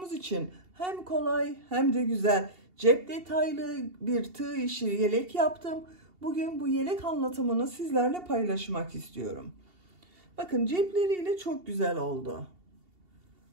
için hem kolay hem de güzel, cep detaylı bir tığ işi yelek yaptım. Bugün bu yelek anlatımını sizlerle paylaşmak istiyorum. Bakın cepleriyle çok güzel oldu.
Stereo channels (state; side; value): late; left; 2.7 ms